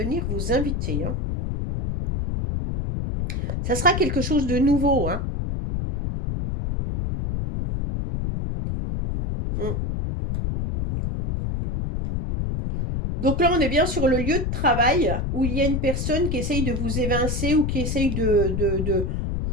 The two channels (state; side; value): noise; left; rumble, 1 dB below the sound